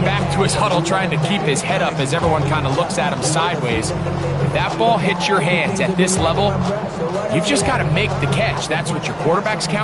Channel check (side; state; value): both; identical; correlation 1.00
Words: back to his huddle trying to keep his head up as everyone kind of looks at him sideways. If that ball hits your hands at this level, you've just got to make the catch. That's what your quarterback's